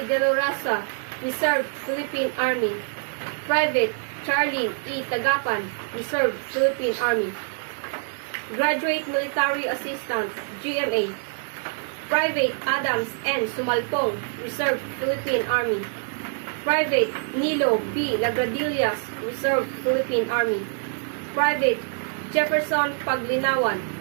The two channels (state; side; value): silent; left; 58 dB below the other